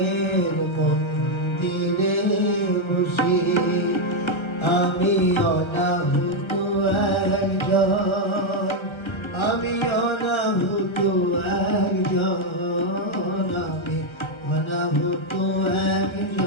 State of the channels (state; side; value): late; right; 1.3 ms